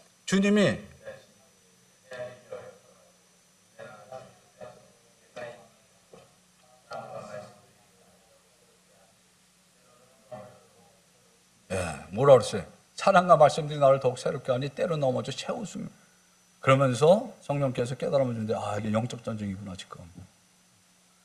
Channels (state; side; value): identical; both; correlation 1.00